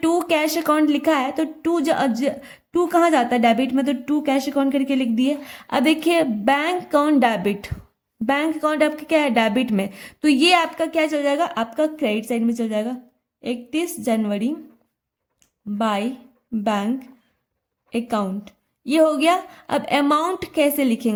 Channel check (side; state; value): both; identical; correlation 1.00